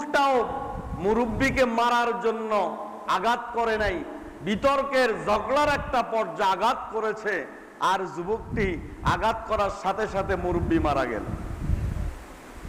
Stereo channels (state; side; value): identical; both; correlation 1.00